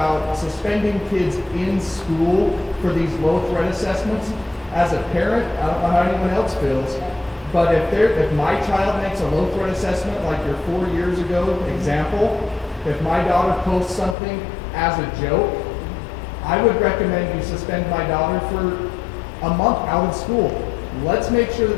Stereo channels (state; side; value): drops out; right; at 14.2 s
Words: suspending kids in school for these low threat assessments. As a parent, I don't know how anyone else feels, but if my child makes a low threat assessment like your 4 years ago example, if my daughter posts something as a joke, I would recommend you suspend my daughter for a month out of school. Let's make sure